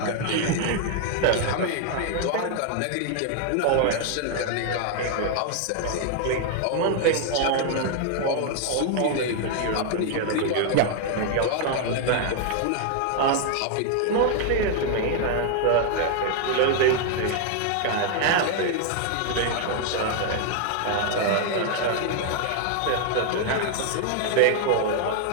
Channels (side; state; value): both; different; correlation 0.00